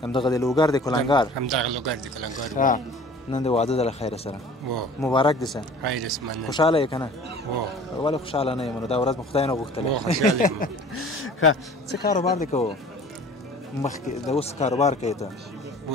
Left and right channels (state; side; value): normal; both; correlation 0.46